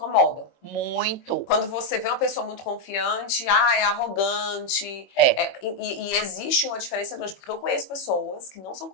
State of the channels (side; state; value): right; late; 22 ms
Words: Muito. Quando você vê uma pessoa muito confiante, é arrogante. E existe uma diferença grande, porque eu conheço pessoas que não são